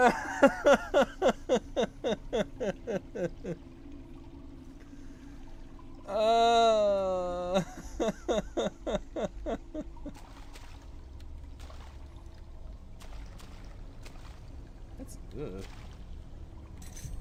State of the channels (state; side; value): identical; both; correlation 1.00